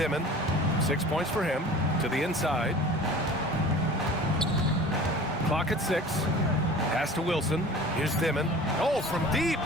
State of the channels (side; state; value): both; normal; correlation 0.42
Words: 6 points for him. To the inside. Clock at 6. Pass to Wilson. Here's Dimon. Oh, from deep.